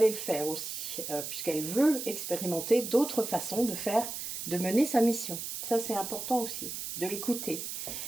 le faire aussi, puisqu'elle veut expérimenter d'autres façons de mener sa mission. Ça, c'est important aussi, de l'écouter.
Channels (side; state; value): right; noise; hiss, 6 dB below the sound